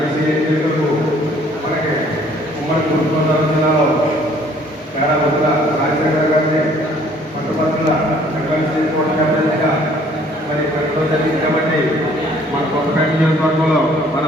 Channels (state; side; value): normal; both; correlation 0.58